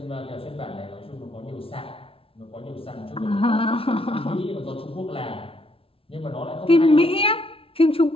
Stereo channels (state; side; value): late; right; 0.26 ms